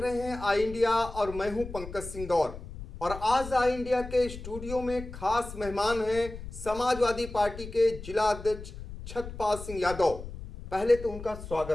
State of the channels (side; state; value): left; noise; rumble, 12 dB below the sound